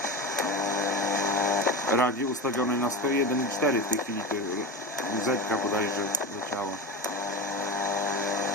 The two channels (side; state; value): both; normal; correlation 0.24